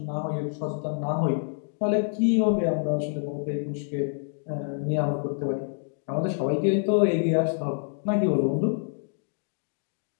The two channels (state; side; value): silent; right; 59 dB below the other